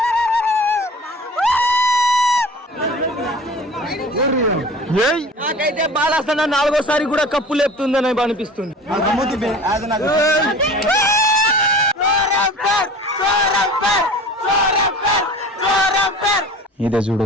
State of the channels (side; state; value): both; normal; correlation 0.40